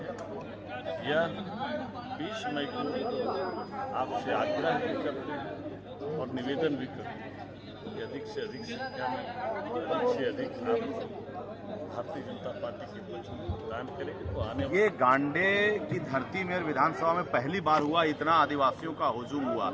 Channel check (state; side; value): identical; both; correlation 1.00